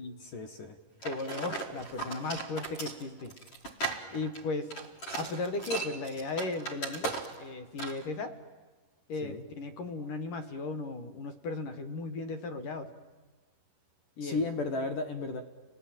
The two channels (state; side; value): late; right; 11 ms